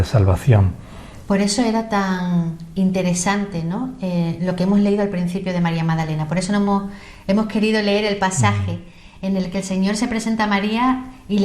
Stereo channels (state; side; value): identical; both; correlation 1.00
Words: salvación. Por eso era tan interesante, ¿no?, lo que hemos leído al principio de María Magdalena. Por eso hemos querido leer el pasaje en el que el Señor se presenta a María y